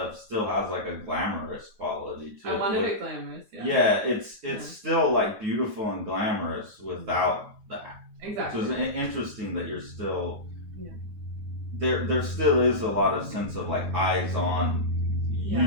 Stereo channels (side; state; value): left; late; 9.6 ms